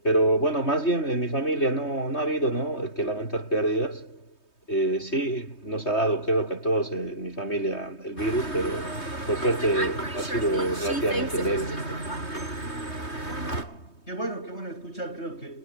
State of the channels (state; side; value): late; right; 3.2 ms